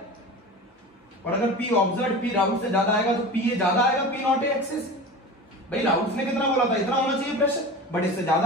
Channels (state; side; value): normal; both; correlation 0.32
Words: और अगर P ऑब्जर्व्ड P राउट से ज्यादा आएगा तो P ज्यादा आएगा P नॉट ए एक्से से। भाई राउट ने कितना बोला था, इतना होना चाहिए प्रेशर, बट इससे